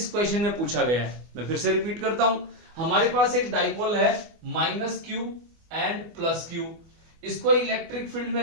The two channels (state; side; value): late; left; 24 ms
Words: क्वेश्चन में पूछा गया है। मैं फिर से रिपीट करता हूं, हमारे पास एक डाइपोल है -q एंड +q। इसको इलेक्ट्रिक फील्ड में